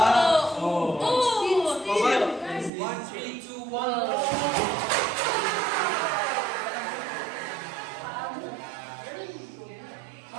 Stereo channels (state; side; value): drops out; left; at 2.7 s